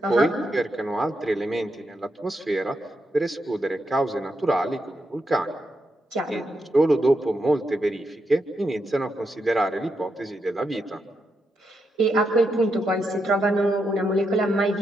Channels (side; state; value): both; normal; correlation 0.83